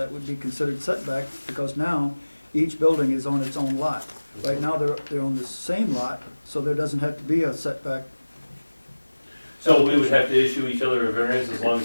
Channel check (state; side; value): inverted; both; correlation -1.00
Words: would be considered setback, because now each building is on its own lot. Right now, they're on the same lot, so there doesn't have to be a setback. So we would have to issue each other a variance as long